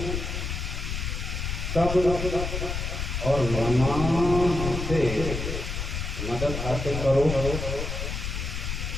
صبر اور نماز سے مدد حاصل کرو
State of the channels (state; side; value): noise; left; rumble, 3 dB below the sound